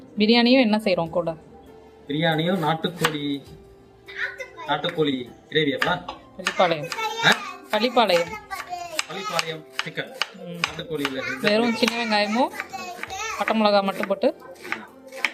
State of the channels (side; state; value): both; identical; correlation 1.00